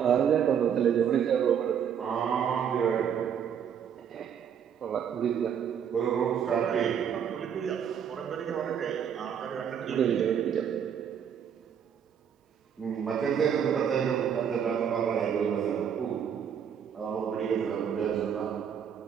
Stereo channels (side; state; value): left; quieter; 8.1 dB